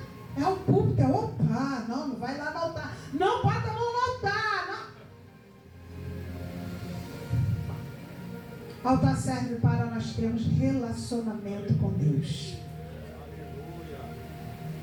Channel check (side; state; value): both; identical; correlation 1.00